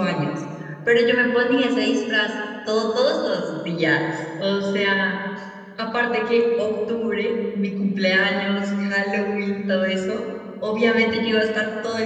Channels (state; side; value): identical; both; correlation 1.00